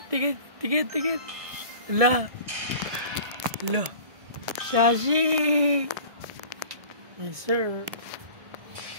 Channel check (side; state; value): left; late; 1.6 ms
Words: Tigit. La. Lo. Shashi! Yes, sir.